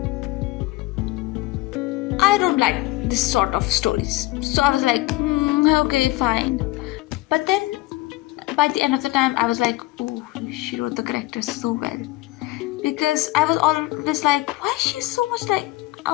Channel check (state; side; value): quieter; right; 19.0 dB